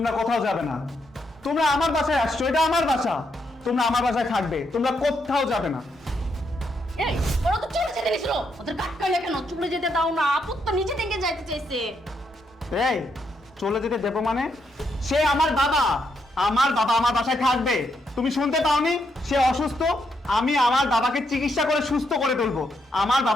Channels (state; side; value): normal; both; correlation 0.78